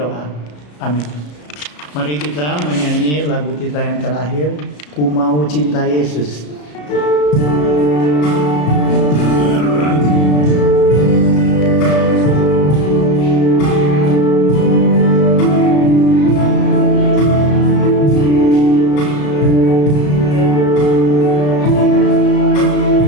Amin. Mari kita menyanyi lagu kita yang terakhir, Ku Mau Cinta Yesus.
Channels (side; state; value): right; late; 34 ms